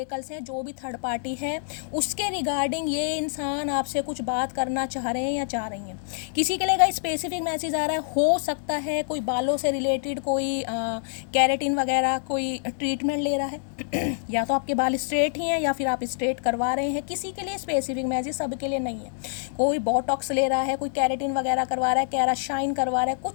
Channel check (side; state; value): right; silent; digital silence